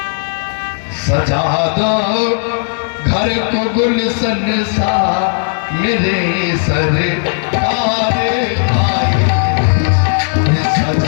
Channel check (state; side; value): silent; right; digital silence